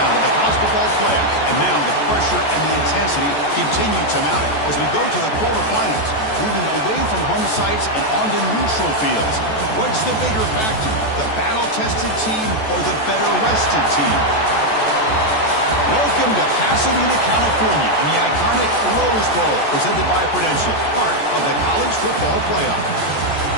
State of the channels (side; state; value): right; late; 14 ms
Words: of the college football playoff, and now the pressure and the intensity continue to mount as we go to the quarterfinals, moving away from home sites and onto neutral fields. What's the bigger factor, the battle-tested team or the better-rested team? Welcome to Pasadena, California, in the iconic Rose Bowl, presented by Prudential, part of the college football playoff.